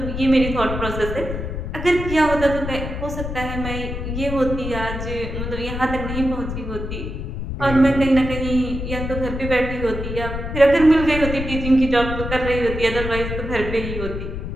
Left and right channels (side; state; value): left; noise; rumble, 5 dB below the sound